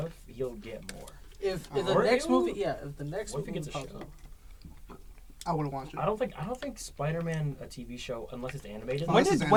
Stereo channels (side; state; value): both; identical; correlation 1.00